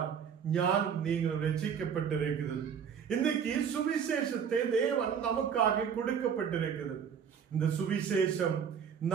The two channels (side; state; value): left; quieter; 7.4 dB